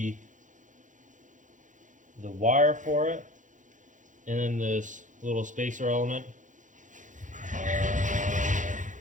wire for it, and then this little spacer element.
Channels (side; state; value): left; late; 0.37 ms